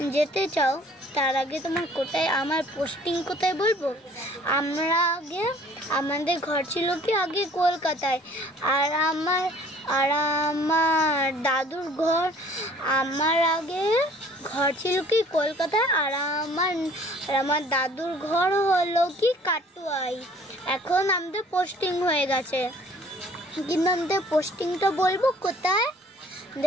যেতে চাও তার আগে তোমার কোথায় আমার পোস্টিং কোথায় বলবো। আমরা আগে আমাদের ঘর ছিল কি আগে কলকাতায়, আর আমার দাদুর ঘর আমার আগে ঘর ছিল কি কলকাতায়, আর আমার দাদুর ঘর হলো কি কাটুয়ায়। এখন আমাদের পোস্টিং হয়ে গেছে, কিন্তু আমাদের পোস্টিংটা বলবো কোথায়।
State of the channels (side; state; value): both; normal; correlation 0.54